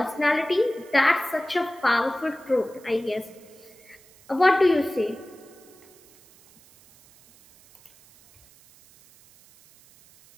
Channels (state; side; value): noise; right; hiss, 27 dB below the sound